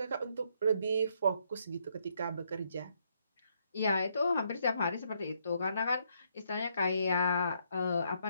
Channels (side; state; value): both; inverted; correlation -0.73